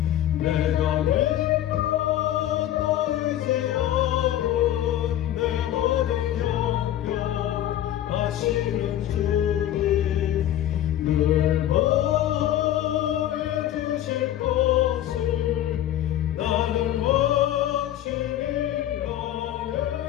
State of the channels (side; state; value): right; quieter; 12.3 dB